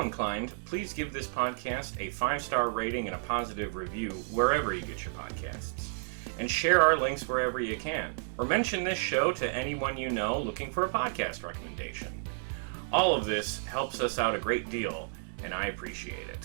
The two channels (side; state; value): left; silent; 57 dB below the other